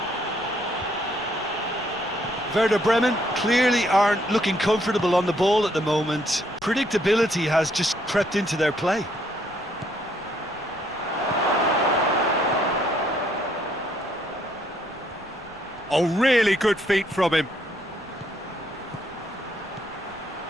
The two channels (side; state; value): left; noise; rumble, 27 dB below the sound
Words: Werder Bremen clearly aren't looking comfortable on the ball at the moment. Predictability has just crept into their play. Oh, really good feet from him.